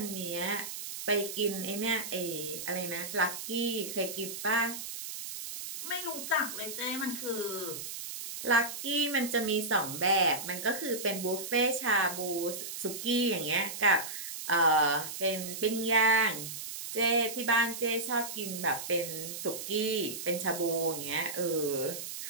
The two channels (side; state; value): right; noise; hiss, 7 dB below the sound